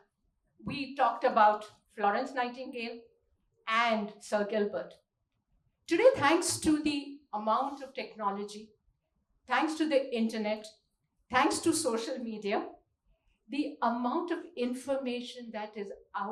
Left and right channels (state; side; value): identical; both; correlation 1.00